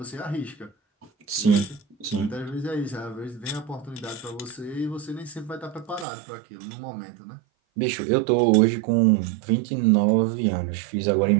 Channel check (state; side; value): drops out; left; at 6.1 s